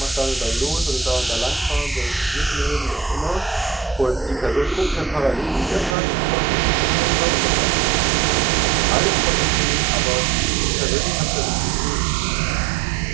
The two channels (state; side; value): drops out; left; at 6.0 s